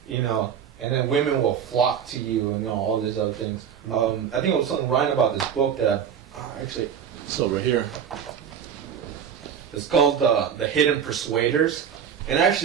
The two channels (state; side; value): quieter; left; 8.1 dB